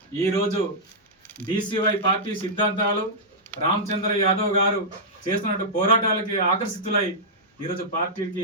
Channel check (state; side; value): normal; both; correlation -0.10